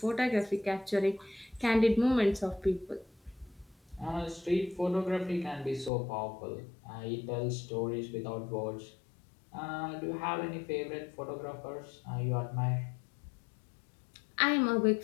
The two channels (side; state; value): right; drops out; at 5.9 s